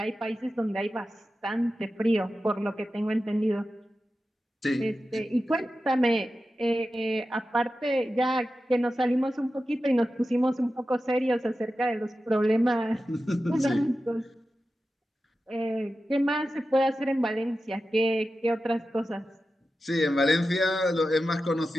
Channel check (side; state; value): both; normal; correlation 0.92